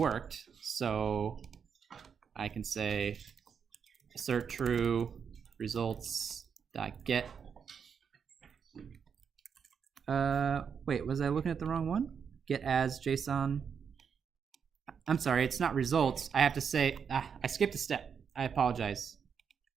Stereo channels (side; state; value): left; quieter; 6.8 dB